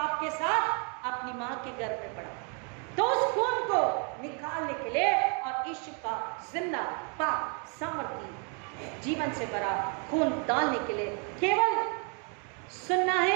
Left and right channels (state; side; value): quieter; left; 38.2 dB